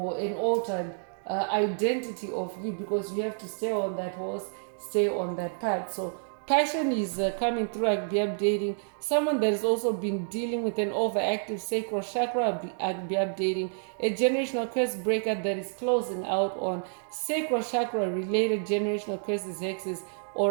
an altered identity of you, because you have to stay on that horse, stay on that path. So passion is coming through. I'll be updating someone that has also been dealing with an overactive sacral chakra. I'll be updating a generational curse breaker that is closing out on sacral chakra related generational curses, hexes,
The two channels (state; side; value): silent; left; digital silence